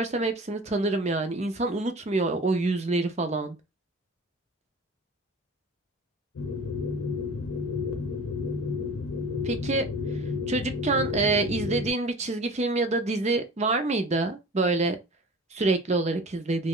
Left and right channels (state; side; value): normal; both; correlation 0.40